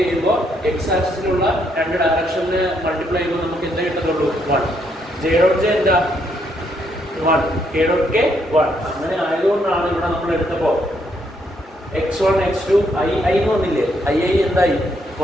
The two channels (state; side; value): normal; both; correlation 0.74